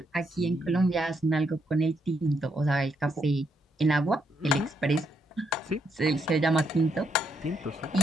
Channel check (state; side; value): normal; both; correlation 0.77